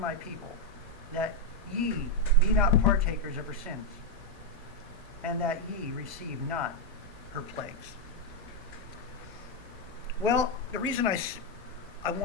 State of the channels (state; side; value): normal; both; correlation 0.01